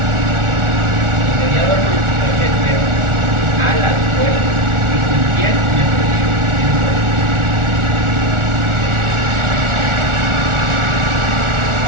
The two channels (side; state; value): left; late; 1.4 ms